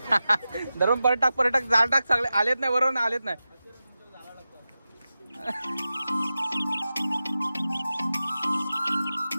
धरून पर्यटक जाळ टाक सगळे आलेत नाही, बरोबर ना, आलेत नाही.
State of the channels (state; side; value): inverted; both; correlation -0.93